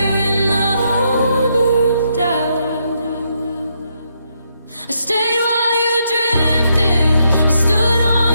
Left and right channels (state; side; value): inverted; both; correlation -0.77